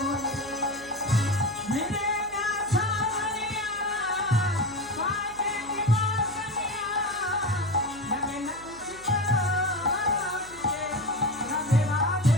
রে। मेरे ना सावरिया बाजे की बासनिया लगे न कुछ बोले राधे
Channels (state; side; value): noise; right; hum, 21 dB below the sound